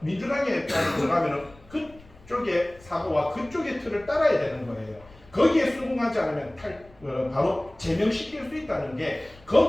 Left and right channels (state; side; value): noise; left; rumble, 25 dB below the sound